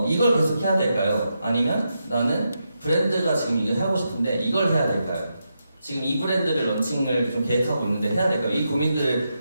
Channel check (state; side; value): inverted; both; correlation -0.85